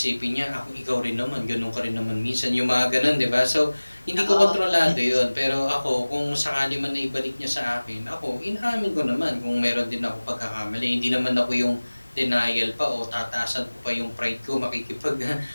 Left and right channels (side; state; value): both; inverted; correlation -1.00